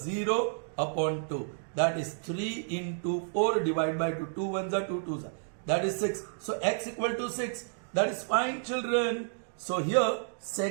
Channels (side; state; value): left; silent; digital silence